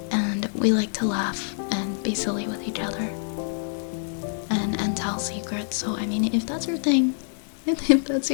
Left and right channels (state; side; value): silent; right; 61 dB below the other